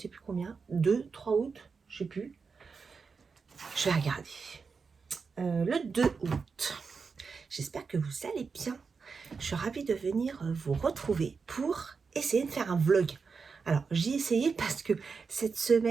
plus combien, 2, 3 août, je sais plus. Je vais regarder. Le 2 août. J'espère que vous allez bien. Je suis ravie de venir vous retrouver pour essayer de faire un vlog. Alors, j'ai essayé parce que cette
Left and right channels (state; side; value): quieter; left; 5.1 dB